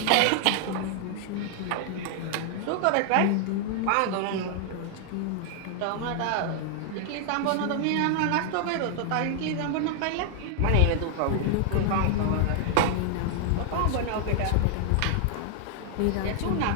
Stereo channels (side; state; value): both; different; correlation 0.00